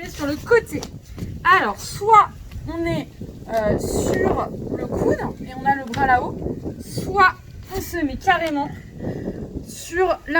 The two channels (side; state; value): both; identical; correlation 1.00